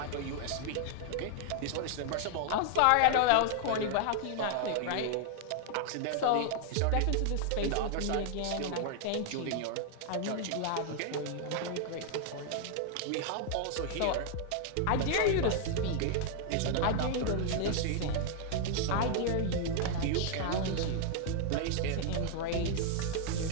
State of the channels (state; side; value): different; both; correlation 0.00